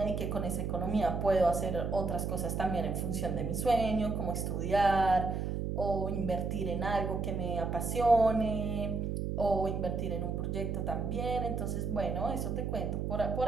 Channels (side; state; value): right; noise; hum, 2 dB below the sound